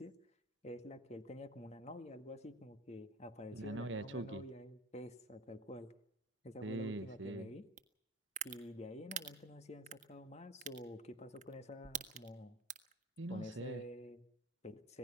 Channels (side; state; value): both; normal; correlation 0.37